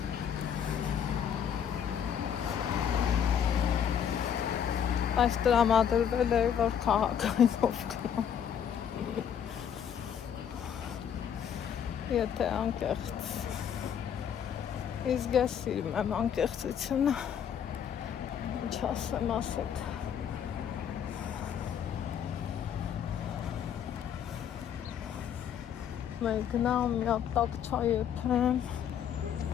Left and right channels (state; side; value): quieter; right; 8.6 dB